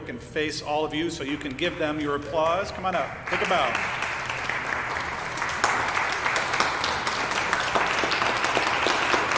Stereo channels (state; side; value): identical; both; correlation 1.00